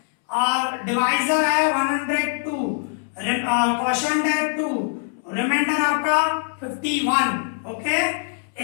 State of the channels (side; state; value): right; silent; 64 dB below the other